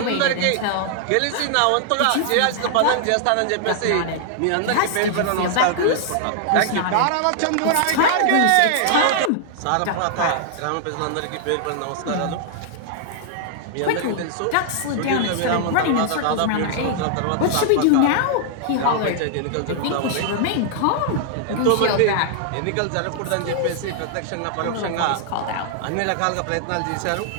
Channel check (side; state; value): both; different; correlation -0.01